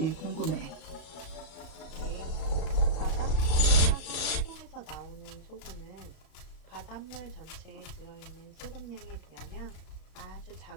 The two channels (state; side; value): late; right; 35 ms